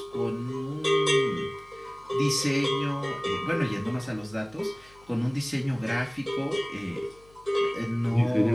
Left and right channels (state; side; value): noise; left; hum, 27 dB below the sound